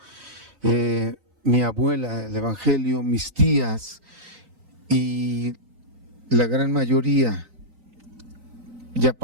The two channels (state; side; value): late; left; 3.9 ms